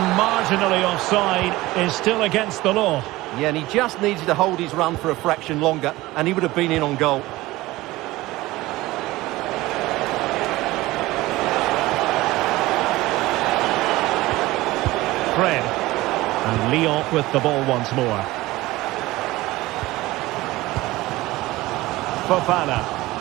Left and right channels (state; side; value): quieter; left; 18.7 dB